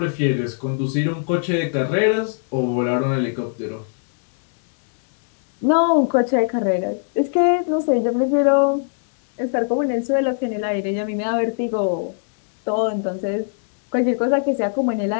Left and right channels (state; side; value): silent; right; digital silence